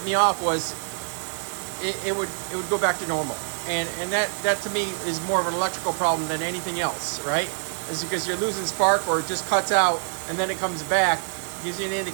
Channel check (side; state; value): left; silent; digital silence